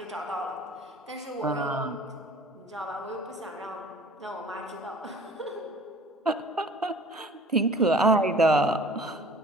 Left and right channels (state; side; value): normal; both; correlation 0.48